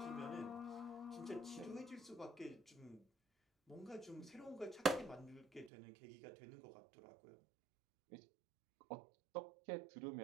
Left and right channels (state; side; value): drops out; left; at 5.7 s